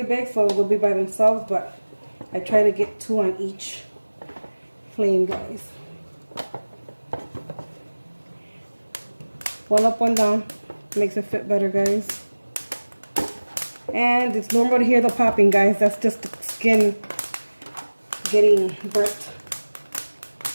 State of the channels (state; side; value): inverted; both; correlation -1.00